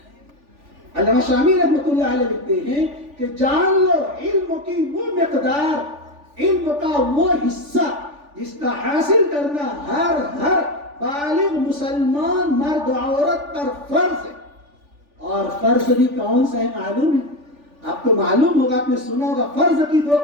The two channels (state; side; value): late; left; 3.4 ms